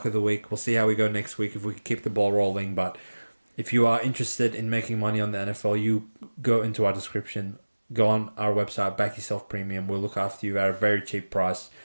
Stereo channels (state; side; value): inverted; both; correlation -1.00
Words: of the week. We'll see how we go next week if we can keep the ball rolling. But if you are interested in making money on the NFL, you go into our description. Go on our website, Back Yourself Premium. We'll look after you at a very cheap price.